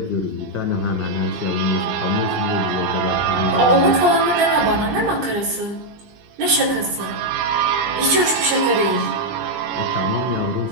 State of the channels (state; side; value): late; left; 20 ms